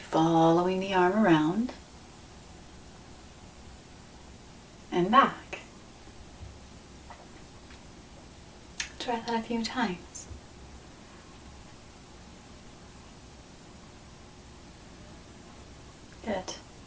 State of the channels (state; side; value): identical; both; correlation 1.00